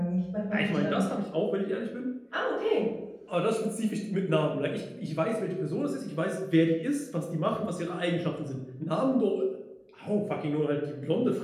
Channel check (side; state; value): both; identical; correlation 1.00